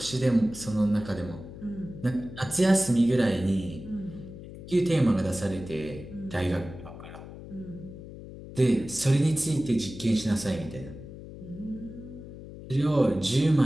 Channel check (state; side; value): noise; left; hum, 14 dB below the sound